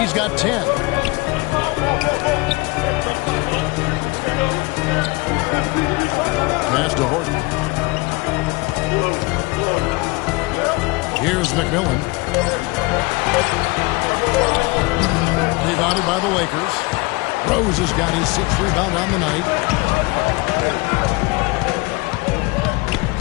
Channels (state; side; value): quieter; right; 25.2 dB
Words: got 10. Pass to Horton. Here's McMillan. Rebounded by the Lakers. Rose has got his 6th rebound on the night.